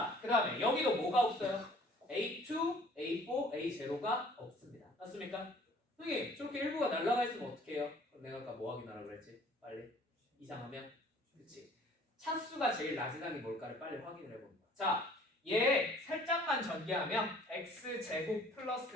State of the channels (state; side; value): normal; both; correlation 0.54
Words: 그 다음에 여기도 뭐가 없어요? A2, A4, A0가 없습니다. 맞습니까? 선생님 저렇게 일부가 날아가 있으면 어떻게 해요? 그럼 내가 아까 뭐 확인하라 그랬지? 빨리 이상하면 그렇지. 차수가 제일 낮은 항이 뭘까를 빨리 확인을 해봅니다. 자, 얘 살짝만 전개하면 x제곱